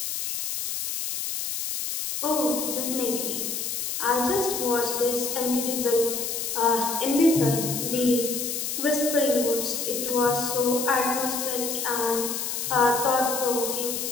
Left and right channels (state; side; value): noise; left; hiss, 3 dB below the sound